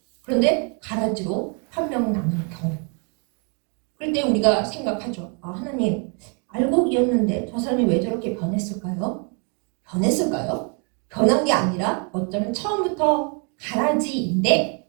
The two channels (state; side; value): quieter; left; 37.6 dB